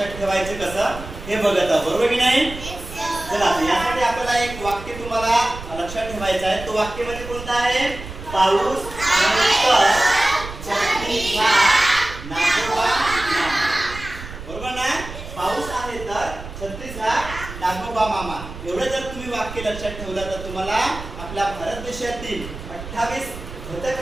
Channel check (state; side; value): noise; right; rumble, 12 dB below the sound